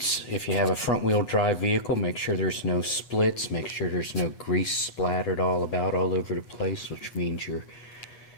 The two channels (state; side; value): late; right; 8.5 ms